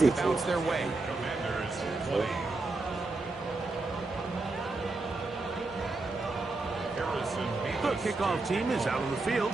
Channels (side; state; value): left; quieter; 3.3 dB